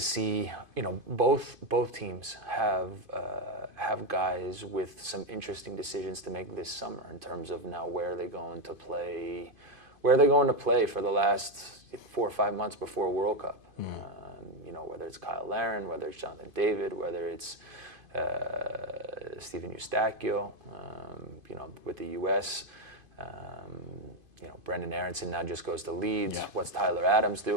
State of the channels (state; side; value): late; left; 2.5 ms